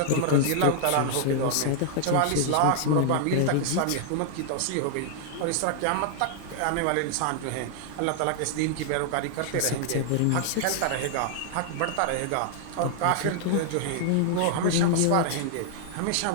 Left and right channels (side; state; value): both; different; correlation -0.01